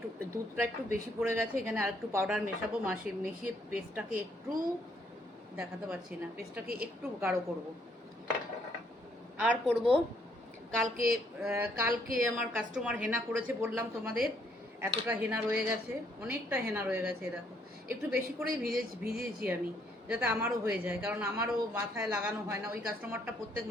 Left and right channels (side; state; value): both; normal; correlation 0.69